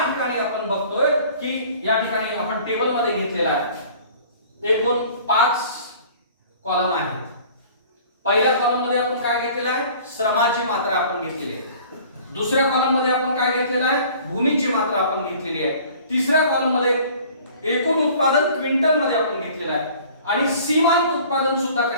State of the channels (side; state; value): both; inverted; correlation -0.49